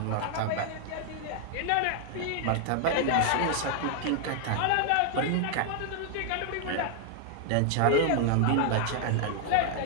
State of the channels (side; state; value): both; different; correlation 0.00